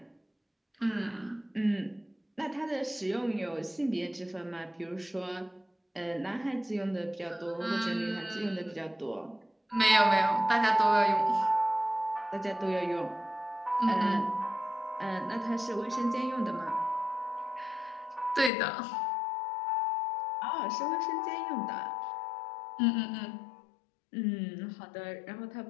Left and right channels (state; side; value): drops out; right; at 18.5 s